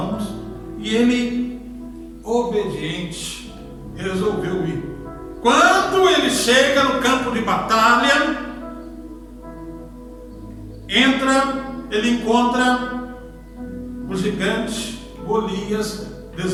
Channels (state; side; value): identical; both; correlation 1.00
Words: E ele, obediente, resolveu ir. Quando ele chega no campo de batalha, ele encontra o gigante Golias